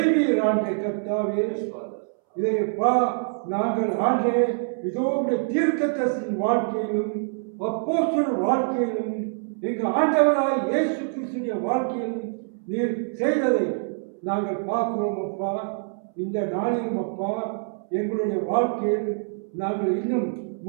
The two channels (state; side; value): silent; left; 62 dB below the other